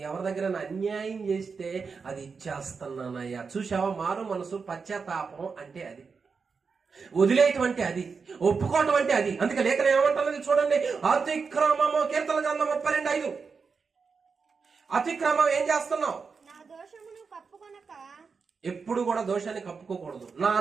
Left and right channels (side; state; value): left; quieter; 5.2 dB